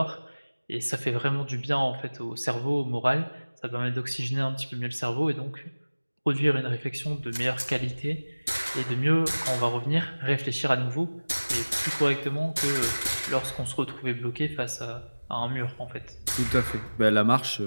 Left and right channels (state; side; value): inverted; both; correlation -1.00